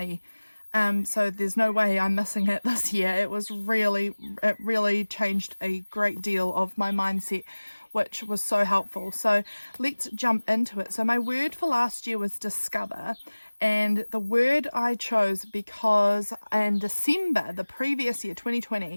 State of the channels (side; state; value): both; inverted; correlation -1.00